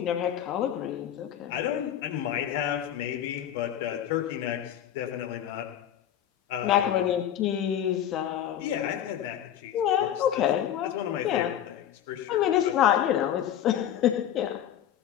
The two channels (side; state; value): right; quieter; 10.5 dB